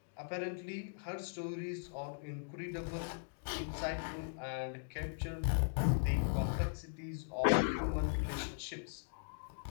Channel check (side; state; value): right; silent; digital silence